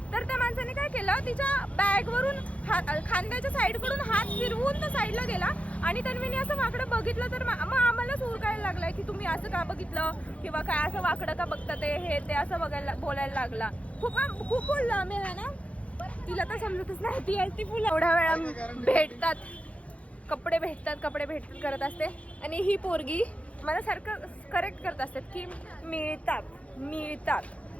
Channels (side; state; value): right; late; 0.064 ms